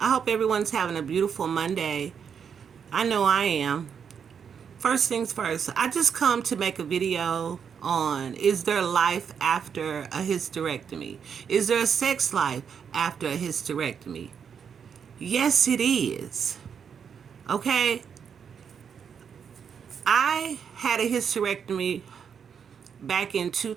hope everyone's having a beautiful Monday. I know I am. First things first, I just come to make a video on, is there life after a hysterectomy? Is there a sex life after a hysterectomy? Yes, it is. Okay? I had a hysterectomy back in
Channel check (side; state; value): left; quieter; 7.2 dB